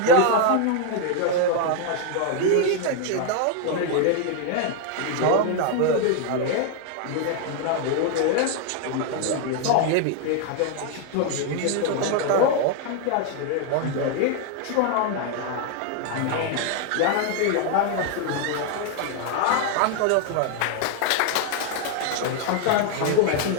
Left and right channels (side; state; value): both; different; correlation 0.00